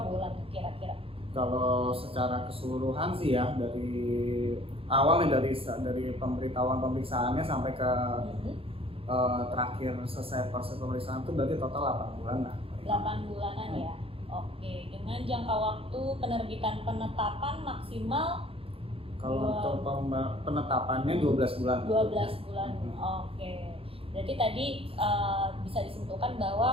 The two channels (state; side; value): late; left; 0.27 ms